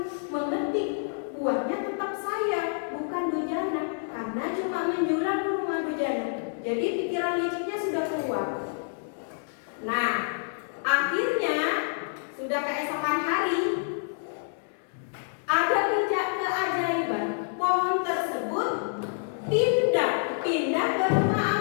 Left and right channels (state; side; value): silent; right; digital silence